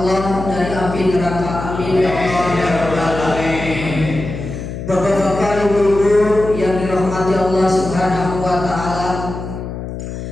dari api neraka. Amin ya Allah ya Rabbal alamin. Bapak-bapak, ibu-ibu yang dirahmati Allah Subhanahu wa taala,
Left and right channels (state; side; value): noise; left; hum, 8 dB below the sound